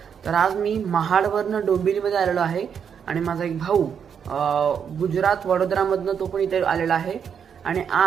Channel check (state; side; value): quieter; left; 7.5 dB